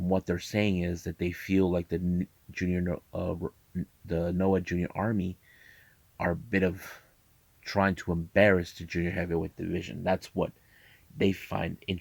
what they're saying is that they feel like the Noah Junior Army are a bit of trying to embarrass the junior heavyweight division. That's what they find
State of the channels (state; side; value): identical; both; correlation 1.00